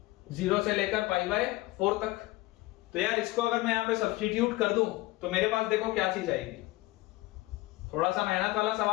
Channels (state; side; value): quieter; right; 19.3 dB